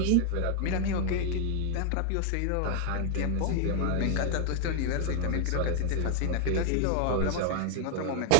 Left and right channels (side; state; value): both; different; correlation 0.00